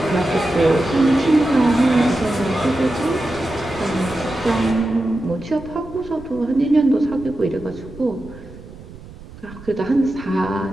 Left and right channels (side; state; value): right; noise; rumble, 17 dB below the sound